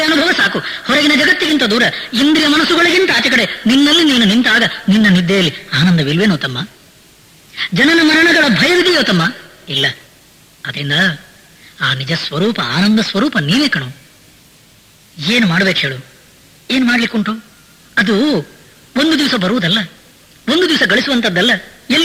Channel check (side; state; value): both; identical; correlation 1.00